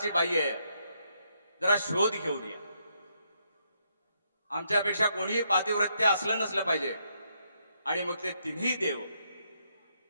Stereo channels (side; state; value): both; inverted; correlation -0.77